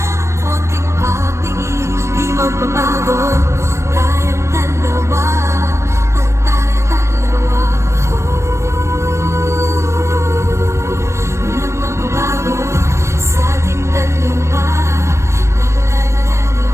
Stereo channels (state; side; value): late; left; 0.13 ms